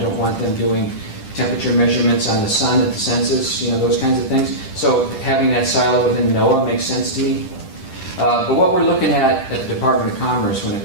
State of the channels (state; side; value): late; right; 10 ms